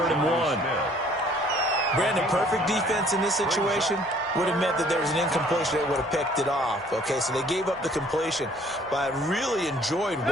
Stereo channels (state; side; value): normal; both; correlation 0.58